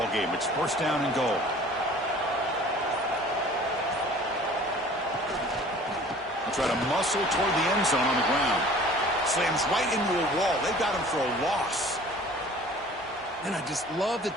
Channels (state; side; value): normal; both; correlation 0.48